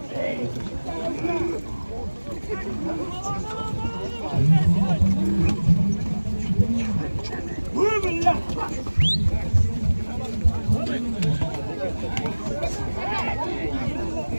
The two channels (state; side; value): inverted; both; correlation -1.00